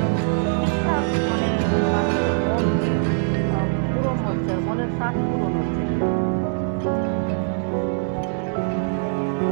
ঠিকঠাক মানে মানুষের মন পূরণ হচ্ছে, মনের স্বাদ পূরণ হচ্ছে।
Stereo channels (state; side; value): silent; left; digital silence